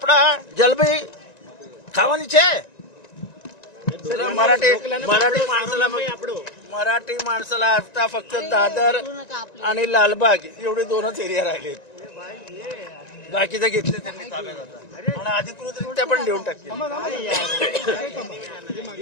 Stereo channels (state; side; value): late; right; 1.9 ms